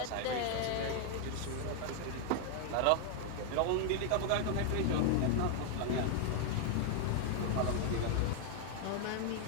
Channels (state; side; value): different; both; correlation 0.00